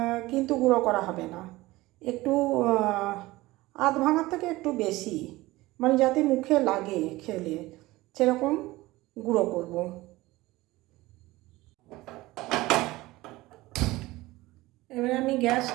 কিন্তু গুঁড়ো করা হবে না, একটু আধ ভাঙার থেকে একটু বেশি, মানে যাতে মুখে লাগে খেলে সেরকম গুঁড়ো করব। এবারে আমি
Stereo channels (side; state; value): left; quieter; 19.1 dB